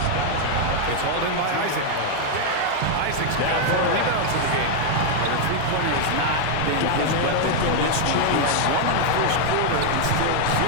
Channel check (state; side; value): different; both; correlation 0.00